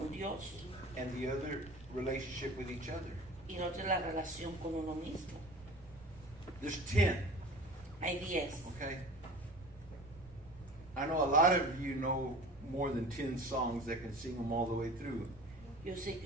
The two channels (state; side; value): noise; right; rumble, 20 dB below the sound